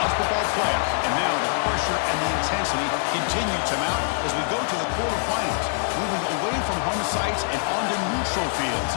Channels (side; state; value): right; silent; digital silence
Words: football playoff, and now the pressure and the intensity continue to mount as we go to the quarterfinals, moving away from home sites and onto neutral fields.